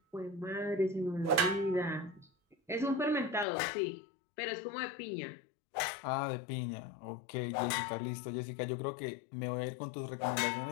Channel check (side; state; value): right; drops out; at 3.5 s